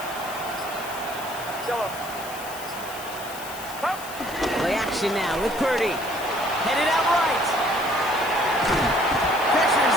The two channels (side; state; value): left; noise; hiss, 13 dB below the sound